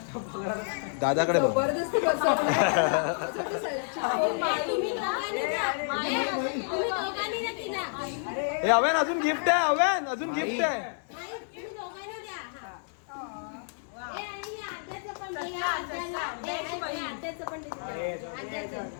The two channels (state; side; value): silent; right; digital silence